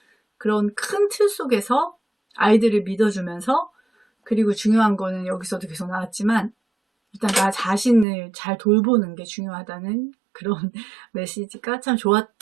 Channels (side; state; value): left; drops out; at 8.1 s